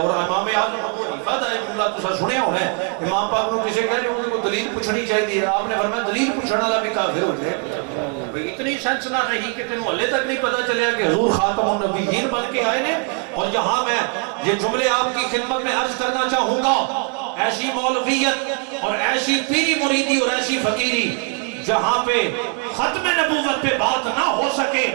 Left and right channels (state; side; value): quieter; left; 34.8 dB